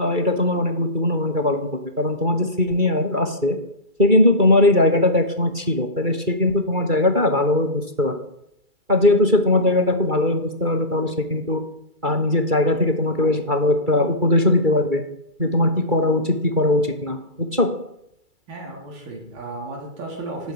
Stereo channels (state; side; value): late; left; 2.3 ms